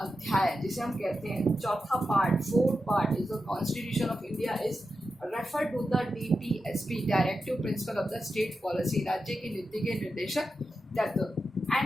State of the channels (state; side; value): normal; both; correlation 0.90